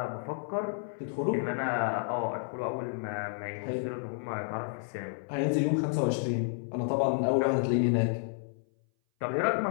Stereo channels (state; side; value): silent; right; 57 dB below the other